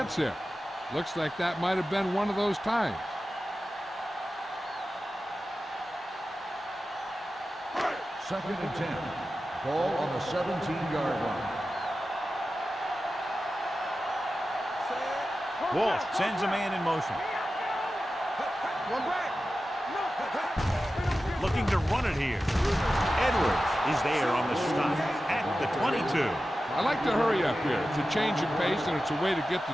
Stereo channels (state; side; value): normal; both; correlation 0.93